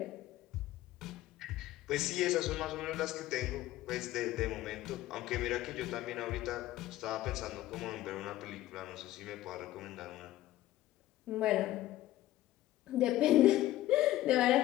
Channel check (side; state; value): right; quieter; 15.0 dB